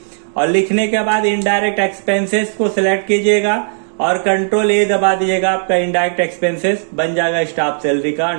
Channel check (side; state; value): left; silent; 69 dB below the other